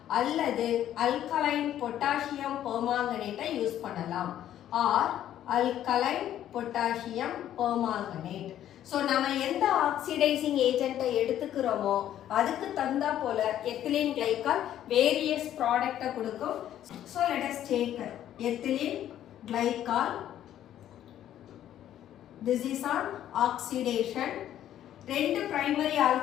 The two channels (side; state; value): right; quieter; 11.5 dB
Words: அல்லது அல்கலைன் பொட்டாசியம் பெர்மாங்கனேட்டை யூஸ் பண்ணலாம் or alkaline potassium permanganate. So நம்ம எந்த ஆக்சிடைசிங் ஏஜென்ட்டை எடுத்துக்கிறோமோ அதுக்கு தகுந்தா போல எத்திலீன் கிளைகால் வேரியஸ் ப்ராடக்ட்டை கொடுக்கும். So let us take ethylene glycol. This is on oxidation. ரெண்டு பிரைமரி